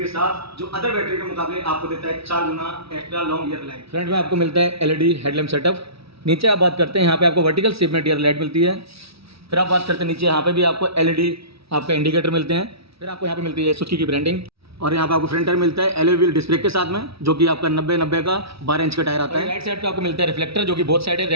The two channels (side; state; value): left; late; 0.76 ms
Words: साथ, जो अदर बैटरी के मुकाबले आपको देता है 4 गुना extra long year life. Front में आपको मिलता है एलईडी हेडलैम्प सेटअप। नीचे आप बात करते हैं यहाँ पे आपको वर्टिकल शेप में डियर लाइट मिलती है। फिर आप बात करते हैं नीचे यहाँ पे भी आपको एलईडी आपका इंडिकेटर मिलते हैं। फिर आपको यहाँ पे मिलती है सुजुकी की ब्रांडिंग, और यहाँ पे आपको फ्रंट टायर मिलता है एलॉय व्हील डिस्क ब्रेक के साथ में, जो कि आपका 90 का 12 इंच का टायर आता है। राइट साइड पे आपको मिलता है रिफ्लेक्टर, जो कि बोथ साइड है,